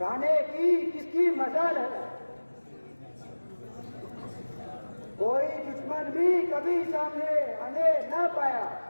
की किसकी मजाल है? कोई दुश्मन भी कभी सामने आने ना पाया,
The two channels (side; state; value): both; inverted; correlation -1.00